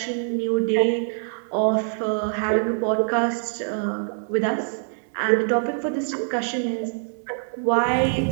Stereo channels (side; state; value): left; silent; digital silence